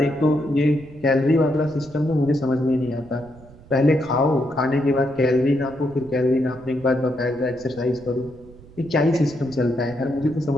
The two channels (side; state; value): right; noise; rumble, 22 dB below the sound